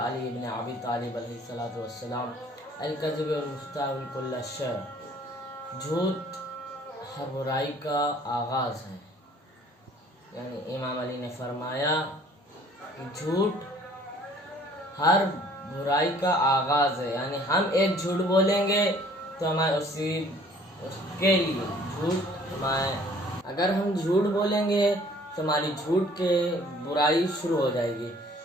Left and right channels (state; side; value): normal; both; correlation 0.56